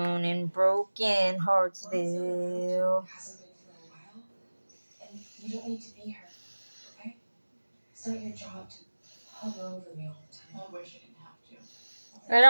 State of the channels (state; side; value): inverted; both; correlation -1.00